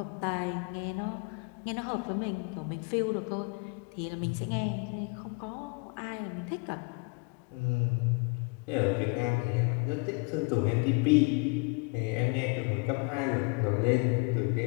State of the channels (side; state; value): right; quieter; 32.1 dB